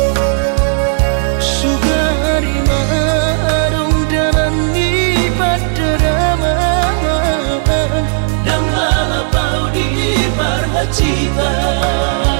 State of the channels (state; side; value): silent; left; digital silence